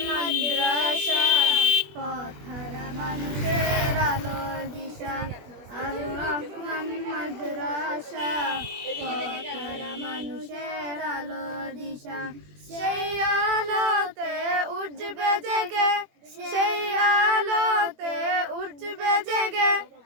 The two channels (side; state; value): left; late; 21 ms